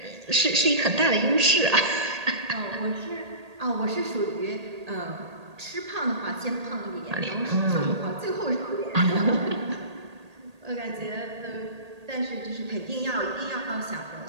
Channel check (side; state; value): left; late; 1.8 ms